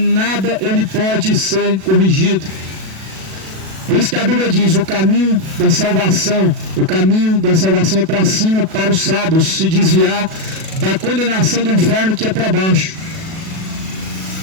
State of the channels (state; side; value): late; left; 37 ms